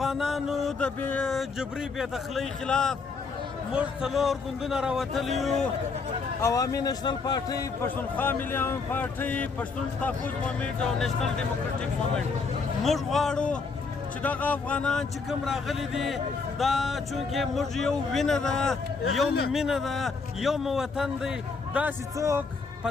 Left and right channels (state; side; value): quieter; right; 4.6 dB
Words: د جبري بېدخلۍ خلاف موږ 4 ګوندونه راوتلي یو عوامي نیشنل پارټۍ پښتونخوا ملي عوام پارټۍ پښتون تحفظ موومنټ او نیشنل ډیموکریټک موومنټ موږ غواړو چې دغه افغانان چې کوم راغلي دي دا چونکې موږ یو وینه ده یو مینه ده یو مو وطن دی داسې څوک په